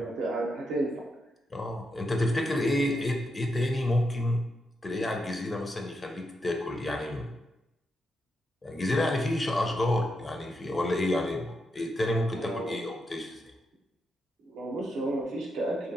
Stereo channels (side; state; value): both; normal; correlation 0.84